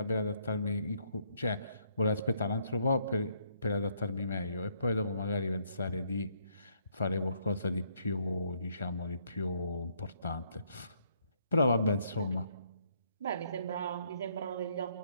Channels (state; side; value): inverted; both; correlation -0.70